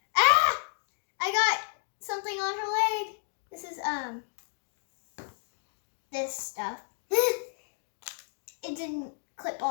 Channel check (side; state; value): right; silent; 57 dB below the other